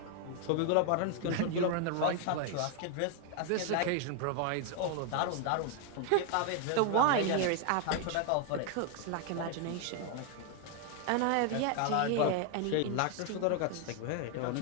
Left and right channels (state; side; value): different; both; correlation 0.00